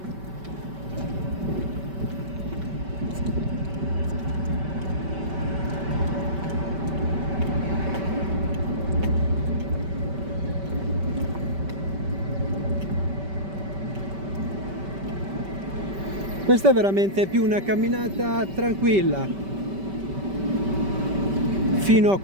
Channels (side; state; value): left; late; 5.2 ms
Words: Questa è veramente più una camminata tranquilla fino a